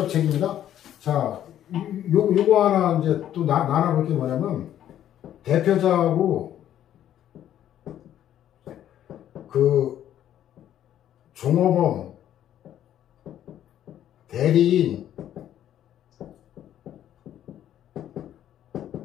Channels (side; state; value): right; quieter; 11.2 dB